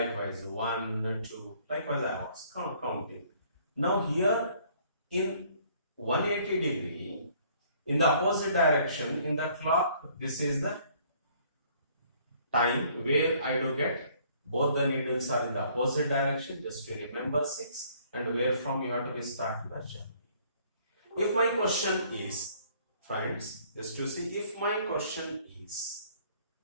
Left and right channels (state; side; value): inverted; both; correlation -0.60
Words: 1, 2, likewise I was counting. Now here in 180 degree, in the opposite direction, in the clock, this is the time where I do get both the needles are in the opposite direction, just to remember 6, and where from you have to start the journey. If my question is, friends, just to see, if my question is,